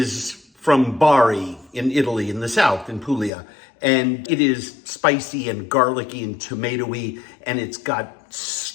from Bari in Italy, in the south, in Puglia. And it is spicy and garlicky and tomatoey, and it's got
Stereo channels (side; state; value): right; drops out; at 3.3 s